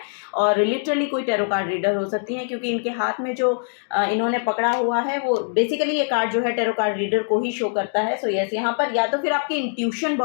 और लिटरली कोई टेरो कार्ड रीडर हो सकती है, क्योंकि इनके हाथ में जो इन्होंने पकड़ा हुआ है वो बेसिकली ये कार्ड जो है टेरो कार्ड रीडर को ही शो करता है. सो यस, यहाँ पर या तो फिर आपकी इंट्यूशन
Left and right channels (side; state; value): right; silent; digital silence